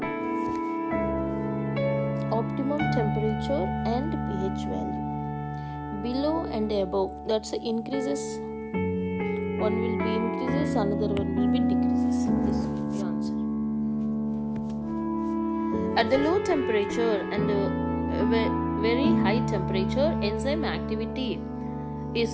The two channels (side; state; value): both; identical; correlation 1.00